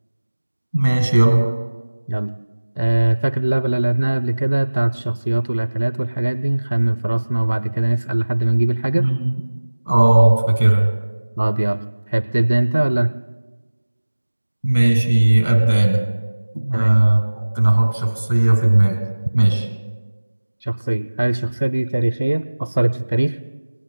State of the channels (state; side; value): inverted; both; correlation -1.00